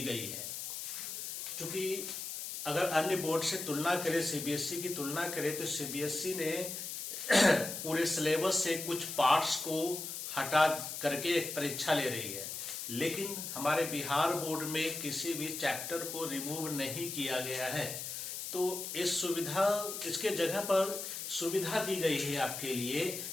गई है। क्योंकि अगर अन्य बोर्ड से तुलना करें, सीबीएसई की तुलना करें, तो सीबीएसई ने पूरे सिलेबस से कुछ पार्ट्स को हटा करके एक परीक्षा ले रही है, लेकिन हमारे बिहार बोर्ड में किसी भी चैप्टर को रिमूव नहीं किया गया है। तो इसके जगह पर सुविधा दी गई है आपके लिए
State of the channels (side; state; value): left; noise; hiss, 6 dB below the sound